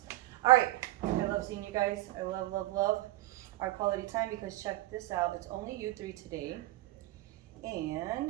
All right. I love seeing you guys. I love, love, love our quality time because check this out. It's only you three today.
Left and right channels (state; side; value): quieter; left; 17.1 dB